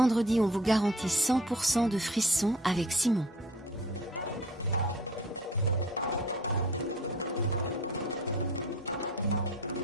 on vous garantit 100% de frissons avec Simon.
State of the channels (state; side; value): normal; both; correlation 0.46